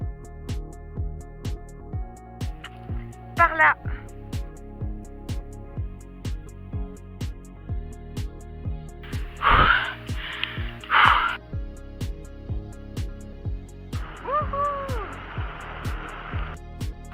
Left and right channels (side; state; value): both; identical; correlation 1.00